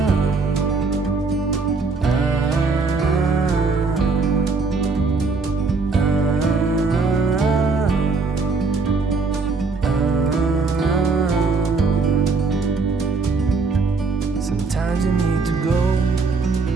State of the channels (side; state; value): left; quieter; 4.3 dB